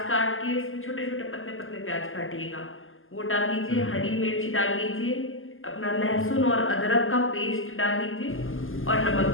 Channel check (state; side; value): late; right; 0.59 ms